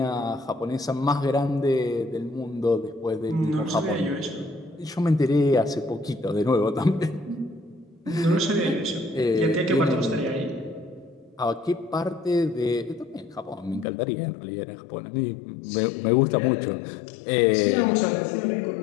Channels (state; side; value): drops out; right; at 13.9 s